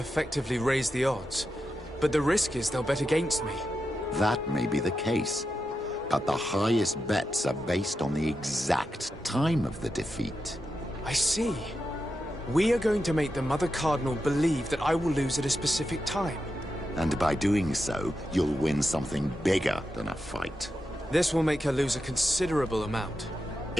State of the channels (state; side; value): normal; both; correlation 0.88